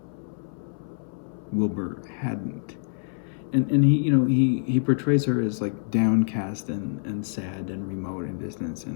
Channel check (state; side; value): silent; right; 61 dB below the other